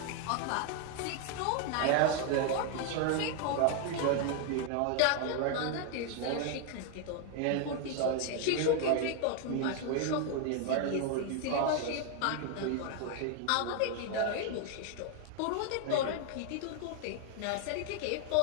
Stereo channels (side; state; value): both; different; correlation 0.00